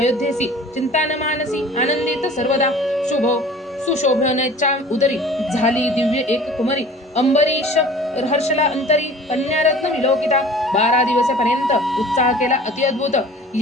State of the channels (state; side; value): normal; both; correlation 0.45